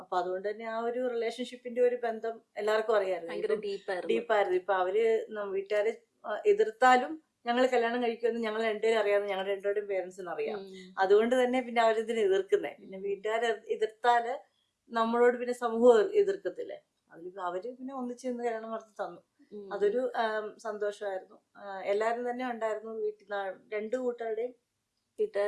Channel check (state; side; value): identical; both; correlation 1.00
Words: അപ്പൊ അതുകൊണ്ട് തന്നെ ആ ഒരു റിലേഷൻഷിപ്പിന്റെ ഒരു ബന്ധം എല്ലാവർക്കും അറിയാമായിരുന്നു, ഡീപ്പായിരുന്നു. ഇപ്പൊ അവര് വീട്ടുകാരെ എതിർത്താലും ഞങ്ങൾ കല്യാണം കഴിക്കുമെന്ന് ഞങ്ങൾ രണ്ടുപേരും അറിയാമെന്ന് ഞങ്ങളുടെ രണ്ടുപേരുടെയും പേരൻസിന് അറിയാം. അതുകൊണ്ട് തന്നെ പിന്നെ അവരിതിനെ എതിർക്കുന്നേ. പിന്നെ വീട്ടുകാരെ എതിർത്താല് നമ്മളോട് പിന്നെ സമൂഹം എതിർക്കത്തില്ലേ, അവര് പിന്നെ ഒന്നിച്ച് നിന്ന് കല്യാണം നടത്തി തന്നു. അതൊരു സന്തോഷമായിരുന്നു. എല്ലാരും തന്നെ ഉണ്ടായിരുന്നു വീട്ടിൽ, രണ്ടു കൂട്ടരുടെയും